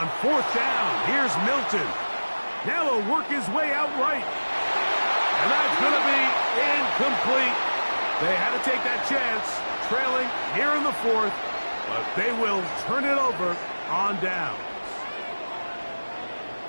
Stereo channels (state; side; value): inverted; both; correlation -1.00